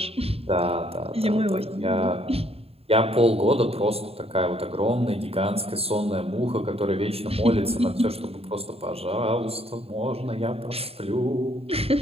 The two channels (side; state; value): left; late; 0.29 ms